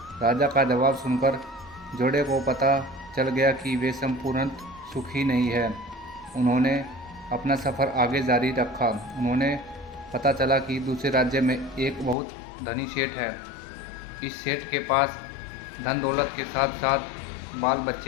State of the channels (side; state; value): right; drops out; at 12.2 s